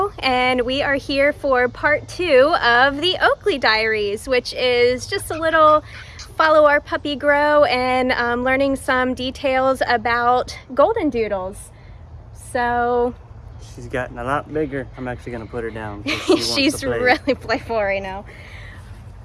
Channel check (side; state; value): both; identical; correlation 1.00